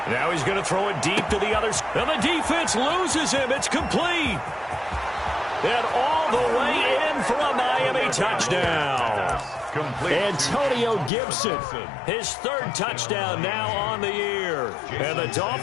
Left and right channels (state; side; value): drops out; right; at 11.1 s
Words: Now he's going to throw it deep to the other side. And the defense loses him. It's complete. And all the way in for a Miami touchdown. Antonio Gibson, his 3rd touchdown now on the year. And the